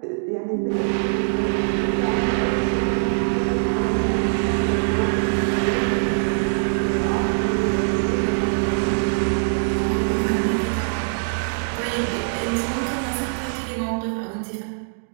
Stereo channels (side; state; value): left; silent; digital silence